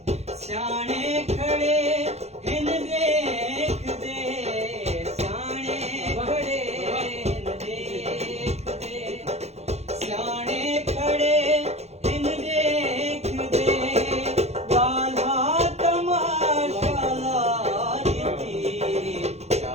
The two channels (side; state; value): left; late; 0.31 ms